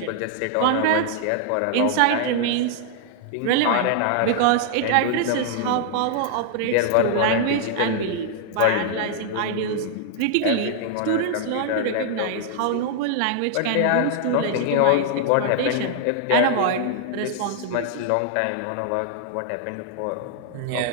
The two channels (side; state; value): both; different; correlation -0.01